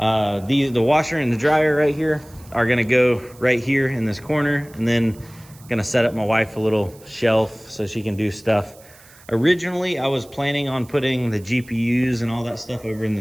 washer and the dryer right here are gonna go right here in this corner, and then gonna set up my wife a little shelf so she can do stuff. Originally, I was planning on putting the GPUs and all that stuff over in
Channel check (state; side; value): noise; right; hiss, 25 dB below the sound